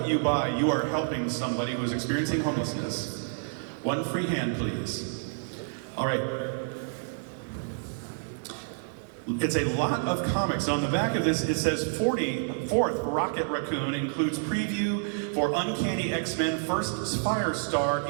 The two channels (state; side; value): silent; left; digital silence